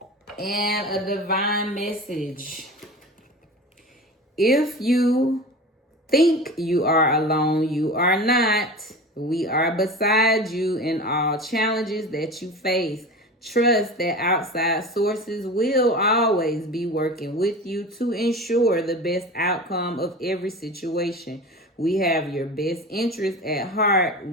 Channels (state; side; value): normal; both; correlation 0.33